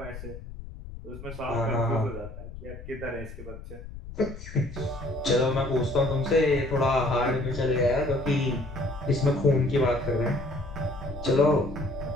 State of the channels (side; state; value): left; noise; rumble, 12 dB below the sound